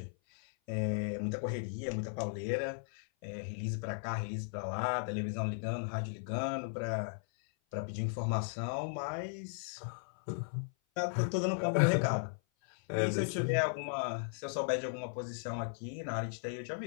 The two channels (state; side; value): silent; right; 54 dB below the other